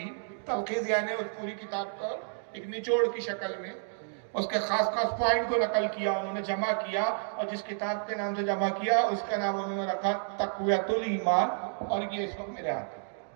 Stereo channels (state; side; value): silent; left; digital silence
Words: تلخیص یعنی اس پوری کتاب کا ایک نچوڑ کی شکل میں اس کے خاص خاص پوائنٹ کو نقل کیا، انہوں نے جمع کیا. اور جس کتاب کے نام سے جمع کیا اس کا نام انہوں نے رکھا تقویۃ الایمان. اور یہ اس وقت میرے ہاتھ ہے.